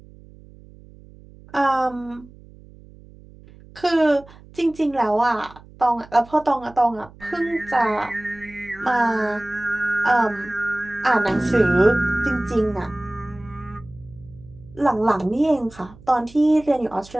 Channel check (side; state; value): right; noise; hum, 22 dB below the sound